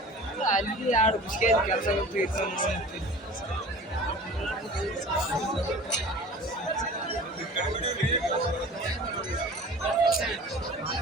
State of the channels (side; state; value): both; normal; correlation 0.41